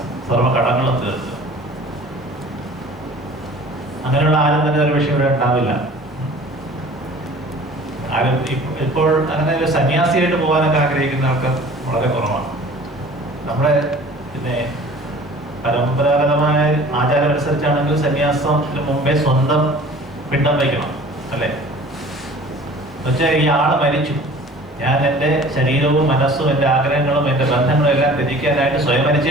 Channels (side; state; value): both; normal; correlation 0.46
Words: സർവ്വ കടങ്ങളും തീർക്കുക. അങ്ങനെയുള്ള ആരും തന്നെ ഒരു വിഷയം ഇവിടെ ഉണ്ടാവില്ല. ആരും ഇപ്പോൾ അങ്ങനെ ഒരു സന്യാസിയായിട്ട് പോകാനൊക്കെ ആഗ്രഹിക്കുന്ന ആൾക്കാർ വളരെ കുറവാണ്. നമ്മുടെ പിന്നെ പരമ്പരാഗതമായ ആചാരം അനുസരിച്ചാണെങ്കിൽ സന്യാസത്തിന് മുമ്പേ സ്വന്തം പിണ്ടം വയ്ക്കണം, അല്ലേ? എന്നുവെച്ചാൽ ഈ ആള് മരിച്ചു, ഞാൻ എൻ്റെ ശരീരവും മനസ്സും എൻ്റെ ആഗ്രഹങ്ങളും എൻ്റെ ബന്ധങ്ങളും എല്ലാം ത്യജിക്കാനായിട്ട് സ്വയം മരിച്ചു